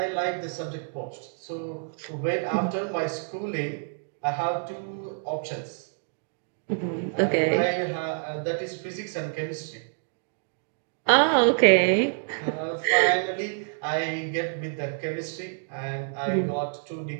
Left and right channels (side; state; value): left; silent; digital silence